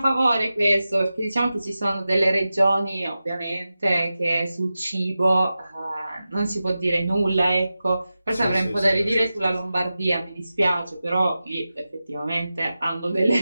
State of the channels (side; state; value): both; inverted; correlation -0.93